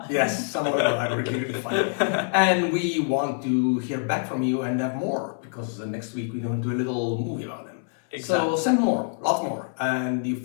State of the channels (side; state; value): right; silent; 61 dB below the other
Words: Yes, some of them are really funny. And we want to hear back from you and have more, because next week we're going to do a little movie about them. Exactly. So send more, lots more, and you